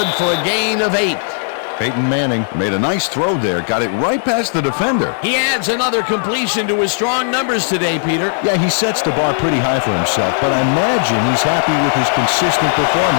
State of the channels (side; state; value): right; silent; digital silence